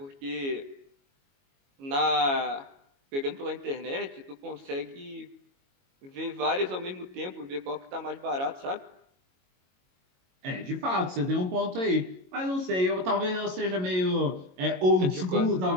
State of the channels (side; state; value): left; late; 22 ms